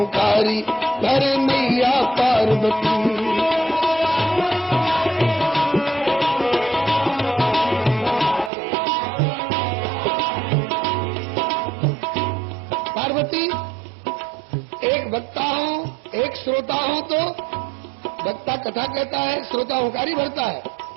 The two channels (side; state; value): left; drops out; at 8.5 s